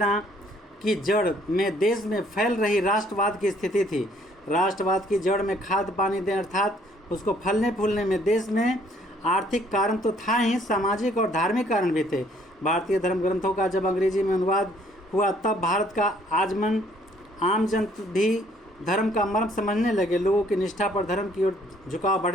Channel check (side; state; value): both; normal; correlation 0.63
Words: की जड़ में देश में फैल रही राष्ट्रवाद की स्थिति थी। राष्ट्रवाद की जड़ में खाद पानी दें अर्थात उसको फलने फूलने में देश में आर्थिक कारण तो था ही, सामाजिक और धार्मिक कारण भी थे। भारतीय धर्म ग्रंथों का जब अंग्रेजी में अनुवाद हुआ तब भारत का आम जन भी धर्म का मर्म समझने लगे। लोगों की निष्ठा पर धर्म की ओर झुकाव